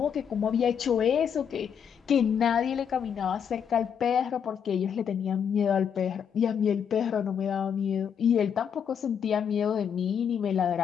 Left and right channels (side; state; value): right; quieter; 7.7 dB